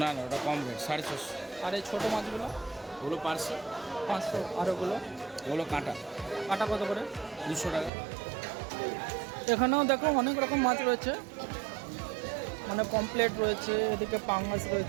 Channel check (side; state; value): left; drops out; at 7.9 s